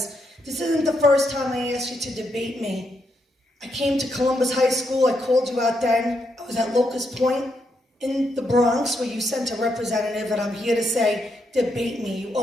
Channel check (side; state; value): both; normal; correlation 0.80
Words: This isn't the first time I asked you to debate me. I came to Columbus High School, I called you out then. I was at Locust Point in the Bronx where you sent a representative, and I'm here to say, debate me. You